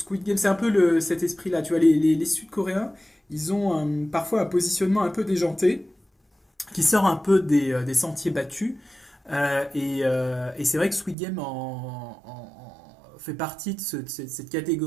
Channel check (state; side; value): drops out; left; at 11.2 s